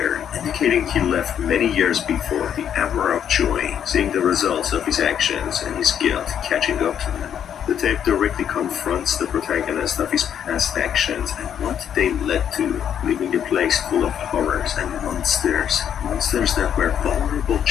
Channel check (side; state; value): right; quieter; 9.1 dB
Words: indicating he left many years before the hour of joy, seeing the results of his actions and his guilt catching up to him. The tape directly confronts the protagonist of his past actions and what they led to, leaving a place full of horrors and monsters. Monsters that were vulnerable